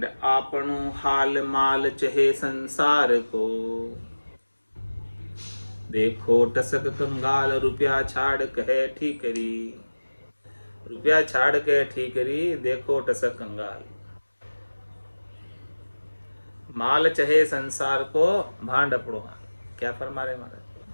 आपनो हाल माल चहे संसार को। देखो टसक कंगाल रुपया छाड़ कहे ठीकरी। रुपया छाड़ के ठीकरी, देखो टसक कंगाल। माल चहे संसार को, भांड अपड़ो हाल। क्या फरमा रहे महाराज?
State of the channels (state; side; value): inverted; both; correlation -1.00